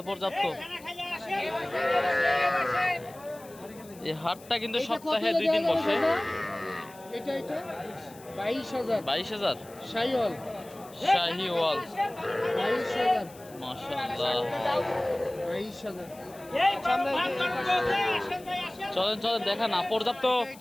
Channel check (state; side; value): noise; left; hiss, 22 dB below the sound